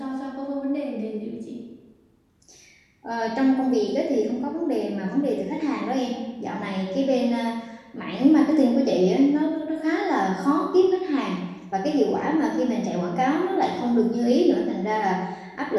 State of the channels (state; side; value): identical; both; correlation 1.00